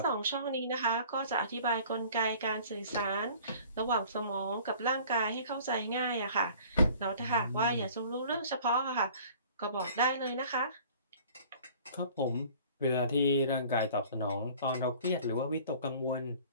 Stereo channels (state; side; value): inverted; both; correlation -0.49